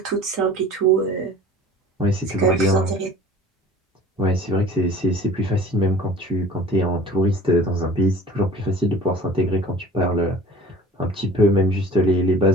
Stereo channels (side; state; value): both; normal; correlation 0.44